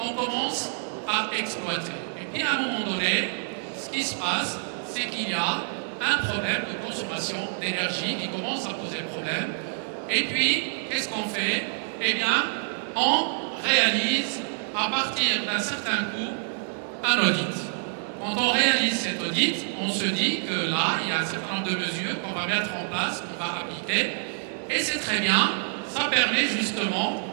commence à exploiter. Et puis à un moment donné, ce qui se passe, c'est qu'il y a un problème de consommation d'énergie qui commence à poser problème. Et puis, qu'est-ce qu'on fait? Eh bien, on réalise à partir d'un certain coût un audit. Quand on réalise cet audit, on se dit que là, il y a un certain nombre de mesures qu'on va mettre en place, qu'on va appliquer. Et c'est très bien, ça permet justement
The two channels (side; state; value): left; silent; 60 dB below the other